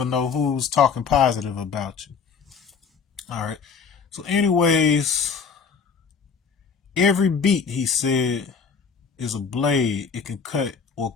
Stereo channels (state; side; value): quieter; right; 5.8 dB